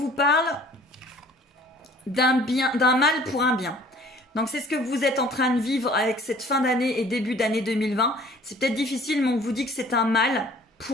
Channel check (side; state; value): both; normal; correlation 0.53